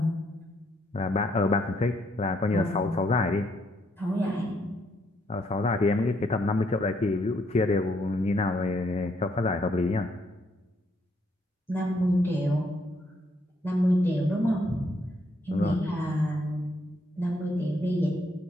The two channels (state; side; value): normal; both; correlation 0.72